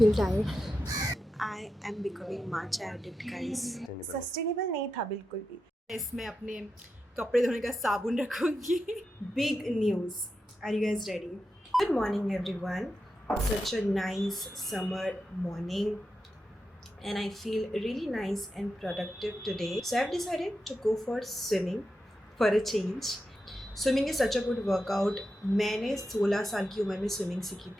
tired. I am becoming matcha addict, guys. Sustainable नहीं था बिल्कुल भी. इसमें अपने कपड़े धोने का साबुन रखूंगी. Big news. Are you guys ready? Good morning, everyone. Such a nice summer morning, and I feel really nice and productive today. So I've decided to go for swimming for a change. Swimming is such a good workout. मैंने 16 साल की उम्र में swimming सीखी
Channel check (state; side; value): normal; both; correlation 0.89